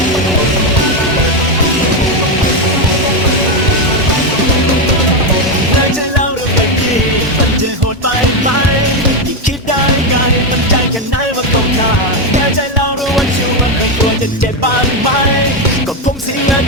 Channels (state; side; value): normal; both; correlation 0.08